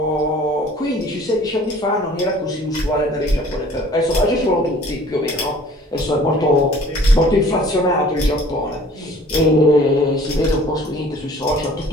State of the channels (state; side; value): normal; both; correlation 0.51